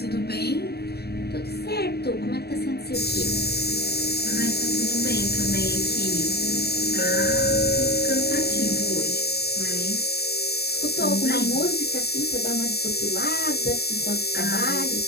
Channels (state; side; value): late; right; 0.47 ms